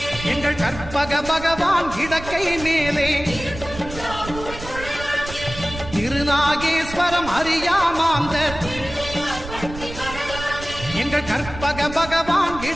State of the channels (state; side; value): noise; right; rumble, 12 dB below the sound